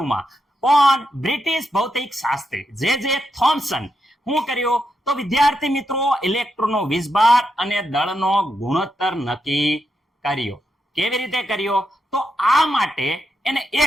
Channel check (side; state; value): both; normal; correlation 0.83